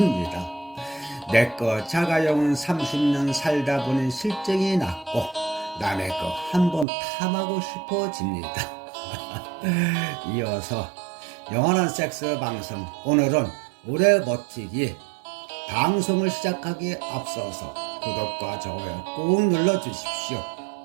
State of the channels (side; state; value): left; drops out; at 6.9 s